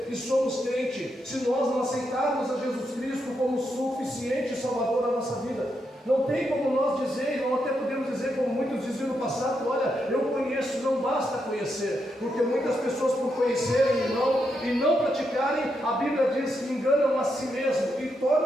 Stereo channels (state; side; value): normal; both; correlation 0.82